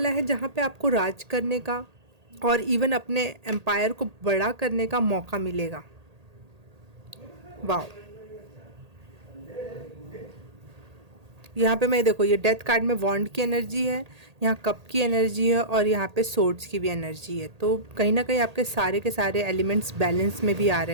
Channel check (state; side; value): late; left; 1.8 ms